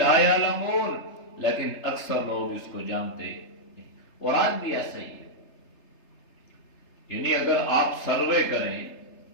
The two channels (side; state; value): right; late; 3.3 ms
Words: يَعْلَمُونَ، لیکن اکثر لوگ اس کو جانتے ہیں۔ اور آج بھی ایسا ہی ہے، یعنی اگر آپ سروے کریں،